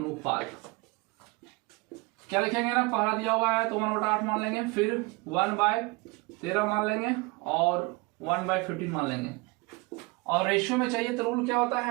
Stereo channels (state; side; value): quieter; left; 25.6 dB